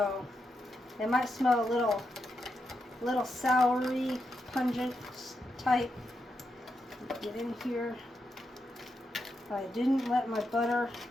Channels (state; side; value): normal; both; correlation 0.84